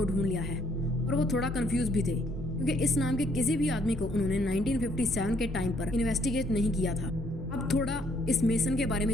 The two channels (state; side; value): normal; both; correlation 0.67